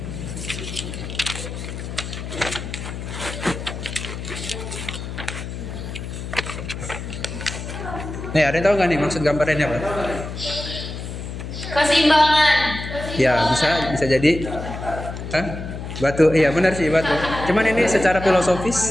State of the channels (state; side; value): noise; left; hum, 8 dB below the sound